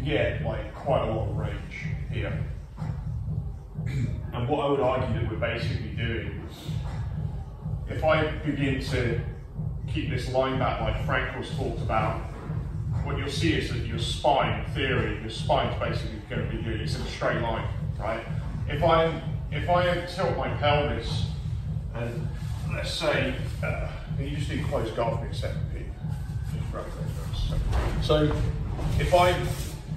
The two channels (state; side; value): identical; both; correlation 1.00